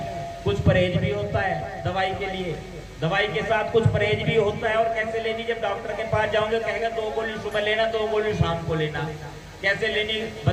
कुछ परहेज भी होता है दवाई के लिए, दवाई के साथ कुछ परहेज भी होता है। और कैसे लेनी, जब डॉक्टर के पास जाओगे कहेगा 2 गोली सुबह लेना, 2 गोली शाम को लेना। कैसे लेनी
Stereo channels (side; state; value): both; identical; correlation 1.00